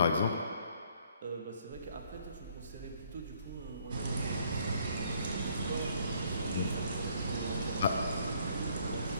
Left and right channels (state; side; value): inverted; both; correlation -0.64